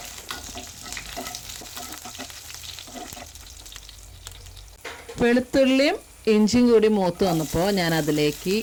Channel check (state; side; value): identical; both; correlation 1.00